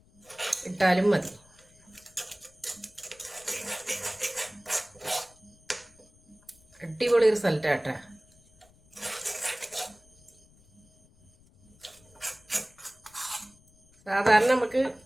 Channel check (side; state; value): left; noise; rumble, 29 dB below the sound